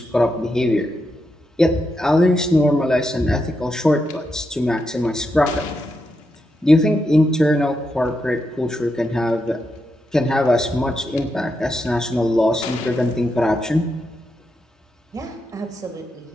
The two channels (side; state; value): both; normal; correlation 0.84